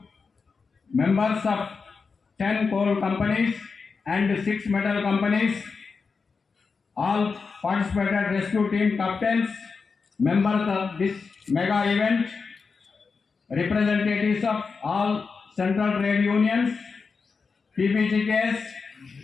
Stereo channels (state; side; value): quieter; right; 4.9 dB